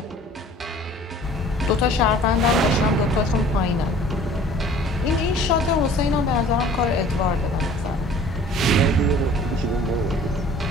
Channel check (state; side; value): normal; both; correlation 0.49